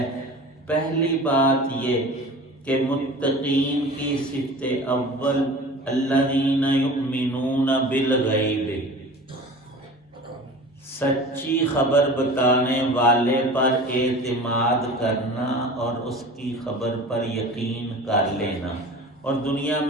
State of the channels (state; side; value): normal; both; correlation 0.38